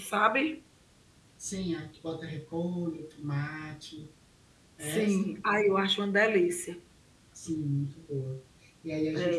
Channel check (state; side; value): identical; both; correlation 1.00